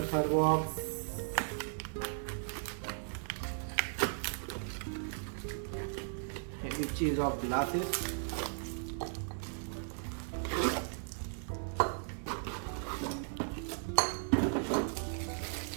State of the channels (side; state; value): left; silent; 53 dB below the other